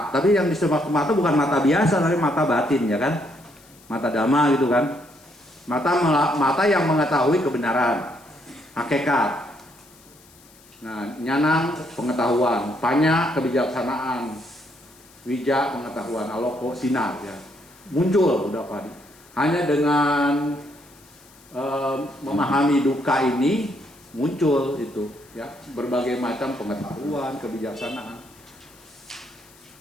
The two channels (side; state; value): left; noise; hiss, 26 dB below the sound